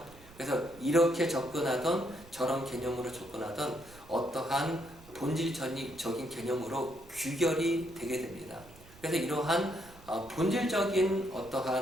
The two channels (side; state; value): right; noise; rumble, 22 dB below the sound